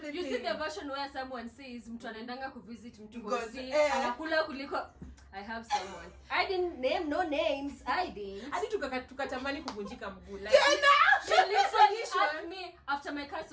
You see everything. the version where someone says mtu anaendanga kuvisit mtu God, hosi anakula anakula kuliko I have someone. I didn't name no names. I didn't. Hadi tukatamani kuvunjika mguu. Like, She literally asked me after my cast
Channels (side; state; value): both; identical; correlation 1.00